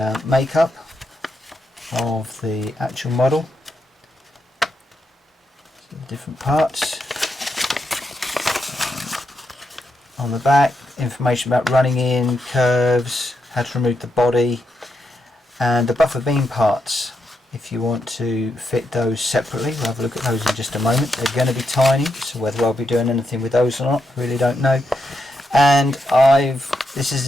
makeup of the actual model, so the different parts. On the back, information about running in, curves, how to remove the body, and the buffer beam parts if you want to fit those separately. We'll have a look at those in just a moment. They're going to be tiny, so whether I'll be doing anything with those or not, really don't know. And this is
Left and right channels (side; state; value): both; normal; correlation 0.83